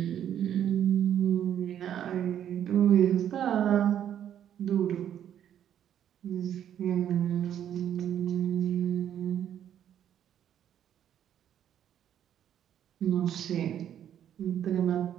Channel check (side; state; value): left; quieter; 10.1 dB